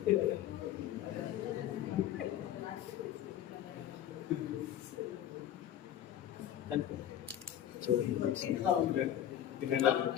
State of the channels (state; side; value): quieter; right; 11.2 dB